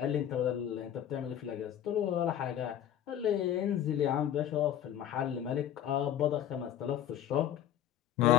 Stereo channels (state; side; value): quieter; right; 10.6 dB